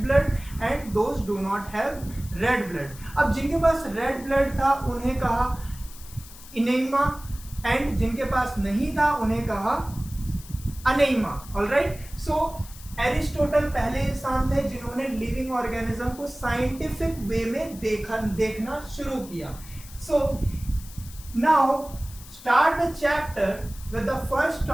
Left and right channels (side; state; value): left; noise; hiss, 18 dB below the sound